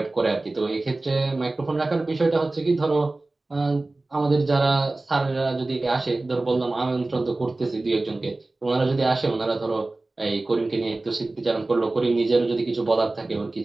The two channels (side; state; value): left; quieter; 3.0 dB